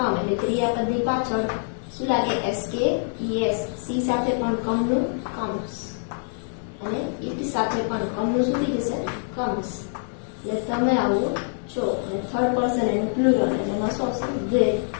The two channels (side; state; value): right; silent; 60 dB below the other